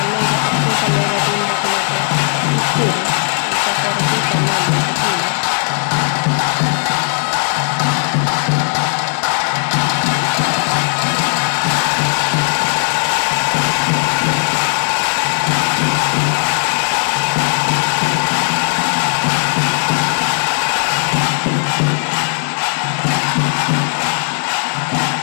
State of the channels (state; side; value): silent; right; digital silence